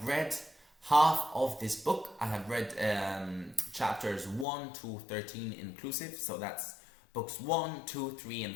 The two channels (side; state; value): right; drops out; at 4.5 s